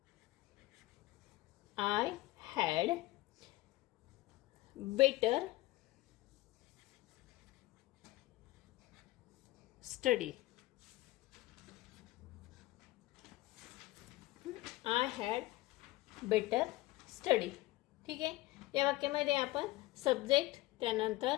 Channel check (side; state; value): right; quieter; 18.6 dB